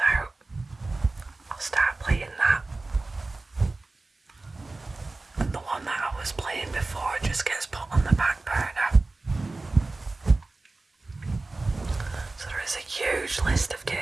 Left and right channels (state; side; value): quieter; left; 3.3 dB